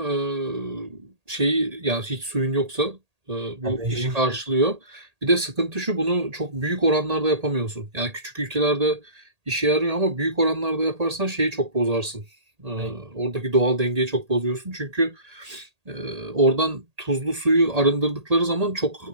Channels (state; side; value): late; left; 1.8 ms